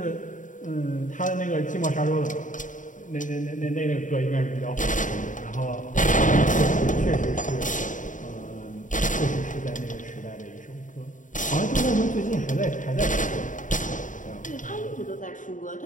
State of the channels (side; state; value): right; late; 0.37 ms